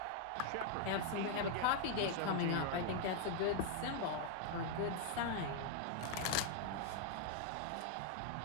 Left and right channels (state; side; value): different; both; correlation 0.00